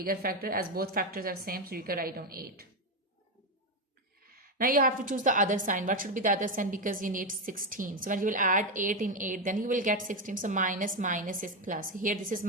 factor, as both factors are same, so you can write down 8. Now you have to choose the other sign. What should be the other sign? Because you need 16. So when you will add 8 in 8, then you will get 16. So minus minus is plus. Here this is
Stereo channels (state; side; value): normal; both; correlation 0.09